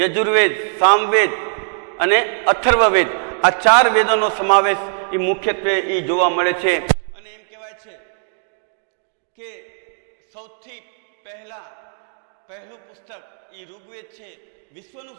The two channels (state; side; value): silent; left; digital silence